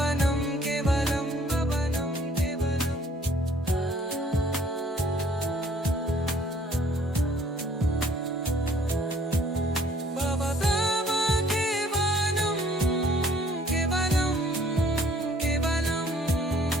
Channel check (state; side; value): normal; both; correlation 0.59